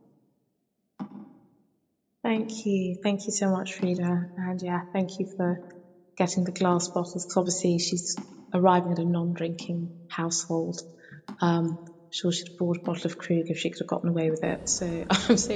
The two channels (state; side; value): identical; both; correlation 1.00